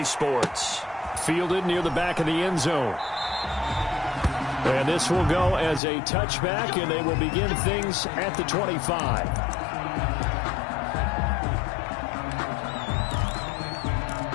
Sports. Fielded near the back of the end zone. And this will go as a touchback, and they will begin things at the 25.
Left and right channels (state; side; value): drops out; right; at 5.8 s